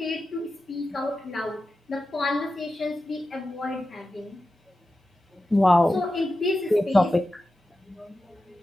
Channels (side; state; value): both; normal; correlation 0.92